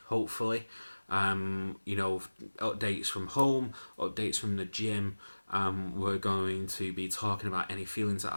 hopefully. Updates from home, updates from the gym. We're going to be talking about any feelings that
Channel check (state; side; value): inverted; both; correlation -1.00